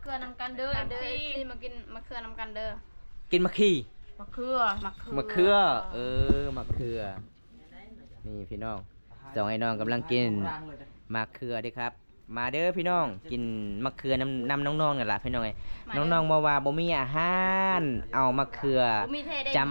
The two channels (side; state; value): both; inverted; correlation -1.00